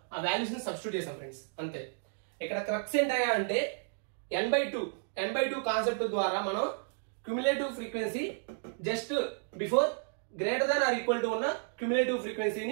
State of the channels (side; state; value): left; silent; digital silence